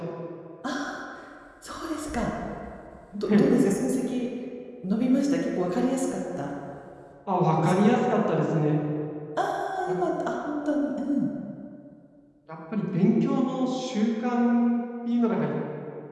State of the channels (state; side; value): identical; both; correlation 1.00